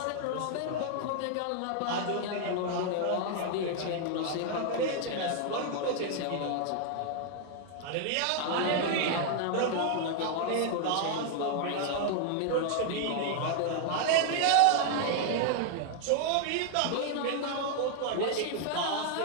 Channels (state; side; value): different; both; correlation 0.00